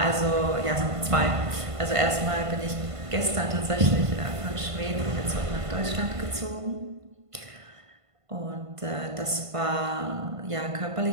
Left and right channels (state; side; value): late; left; 1.5 ms